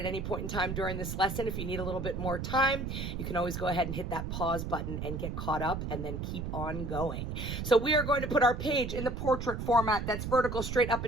any point in time during this lesson, if you need a little bit more time, you can always go ahead and hit that pause button and get caught up and then keep on going. So we are going to put our page in the portrait format that's vertical, straight up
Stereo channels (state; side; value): noise; right; rumble, 4 dB below the sound